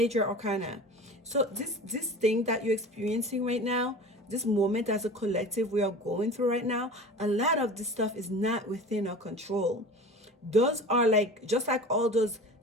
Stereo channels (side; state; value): both; normal; correlation 0.37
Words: arcana. So this thing that you're experiencing right now, this moment as a collective we are going through right now, a lot of this stuff is not within our control. Those are like, just like all those